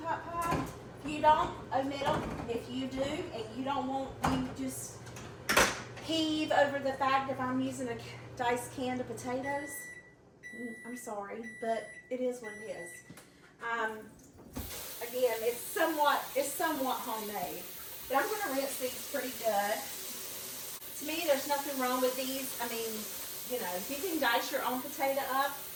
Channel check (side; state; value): both; identical; correlation 1.00